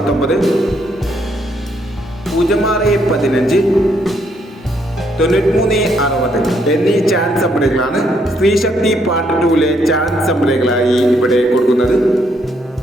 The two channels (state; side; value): normal; both; correlation 0.72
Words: 06-15 93-60 എന്നീ ചാൻസ് നമ്പറുകളാണ് സ്ത്രീശക്തി പാർട്ട് 2-ലെ ചാൻസ് നമ്പറുകളായി ഇവിടെ കൊടുക്കുന്നത്.